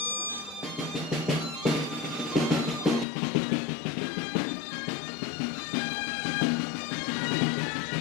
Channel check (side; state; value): right; drops out; at 3.1 s